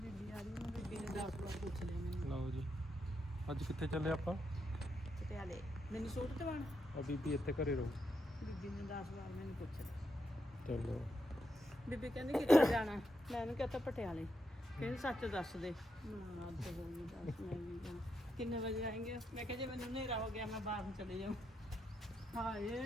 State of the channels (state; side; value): normal; both; correlation 0.82